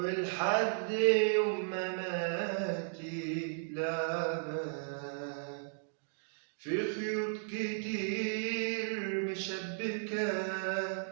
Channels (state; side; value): silent; left; digital silence